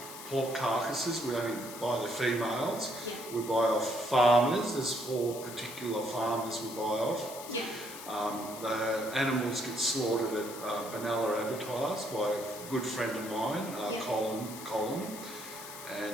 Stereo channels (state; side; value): noise; left; hiss, 12 dB below the sound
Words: pork carcasses, we only buy the females. Yeah. We buy off farmers. There's 4 particular farmers we buy off. Yeah. The animals get slaughtered at Benalla Abattoirs by a good friend of mine, Colin,